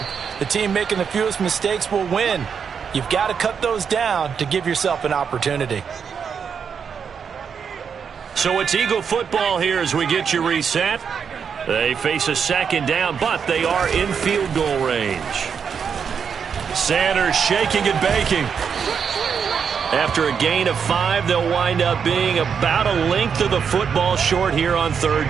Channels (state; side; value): quieter; left; 6.8 dB